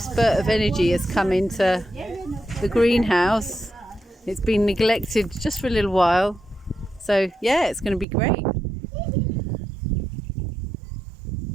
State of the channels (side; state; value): left; drops out; at 8.1 s